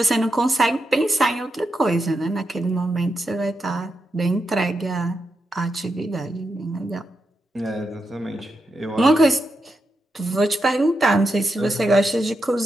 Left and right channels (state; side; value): normal; both; correlation 0.86